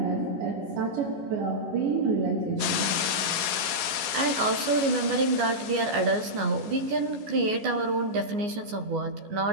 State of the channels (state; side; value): late; left; 14 ms